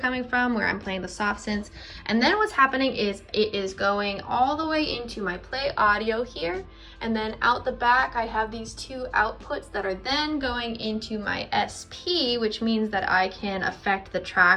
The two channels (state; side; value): identical; both; correlation 1.00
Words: from, where I'm playing the soft synths. And then what's happening is it is going all the way into my play audio here. And then out the back, I have these two outputs that are then going into my SP, which means that I can affect the